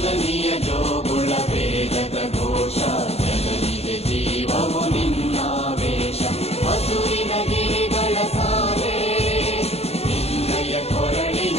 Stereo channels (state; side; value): late; right; 0.30 ms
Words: ಜೋಗುಳ ವೇದದ ಘೋಷ ಜನನಿಗೆ ಜೀವವು ನಿನ್ನಾವೇಶ ಹಸುರಿನ ಗಿರಿಗಳ ಸಾಲೆ ನಿನ್ನಯ